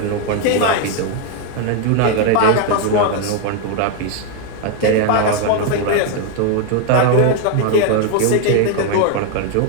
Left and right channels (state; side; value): different; both; correlation 0.01